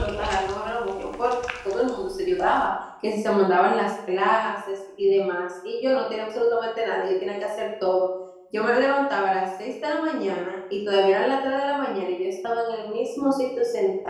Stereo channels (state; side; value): identical; both; correlation 1.00